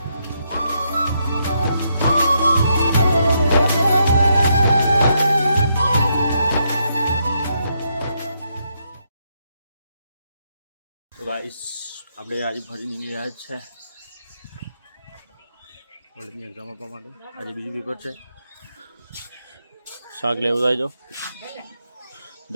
તો ગાઈસ આપણે આજે ફરી નીકળી રહ્યા છે કોલેજની એક્ઝામ આપવા માટે આજે બીજું પેપર છે શાક લેવું જાય જો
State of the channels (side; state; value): both; inverted; correlation -0.78